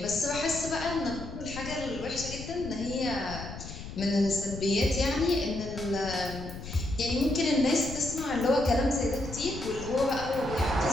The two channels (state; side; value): noise; left; rumble, 11 dB below the sound